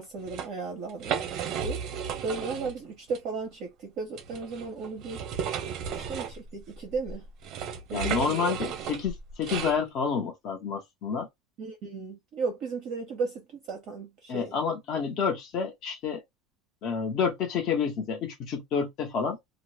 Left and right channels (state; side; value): normal; both; correlation 0.32